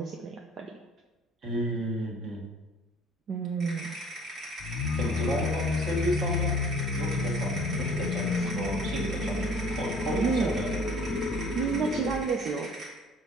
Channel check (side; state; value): both; normal; correlation 0.51